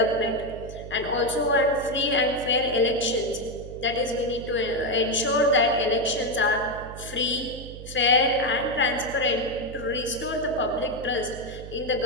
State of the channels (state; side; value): noise; right; hum, 13 dB below the sound